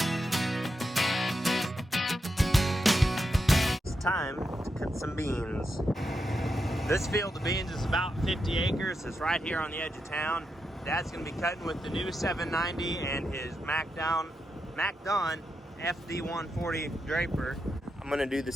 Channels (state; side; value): normal; both; correlation 0.86